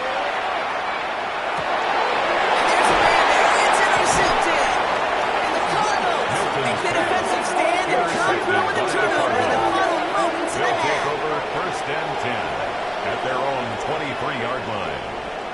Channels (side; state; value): both; identical; correlation 1.00